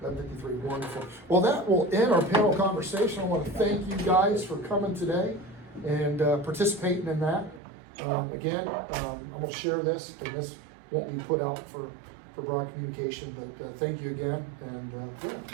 11:53, wonderful. Well, that will end our panel conversation. I want to thank you guys for coming today and participating in that. Again, I'm going to share this, and this won't be put out for broad communication, but thank you again, and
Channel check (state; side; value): drops out; left; at 7.6 s